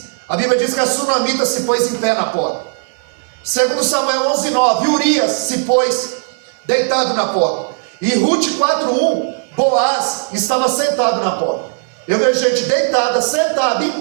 a Bíblia diz que a sunamita se pôs em pé na porta. 2 Samuel 11,9, Urias se pôs deitado na porta. E Ruth 4,1, Boaz estava sentado na porta. Eu vejo gente deitada, sentada, em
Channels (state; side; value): silent; left; 62 dB below the other